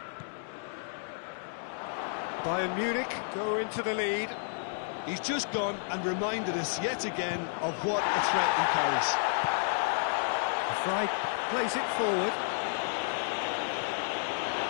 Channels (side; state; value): right; silent; digital silence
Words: Bayern Munich go into the lead. He's just gone and reminded us yet again of what a threat he carries. Fry plays it forward.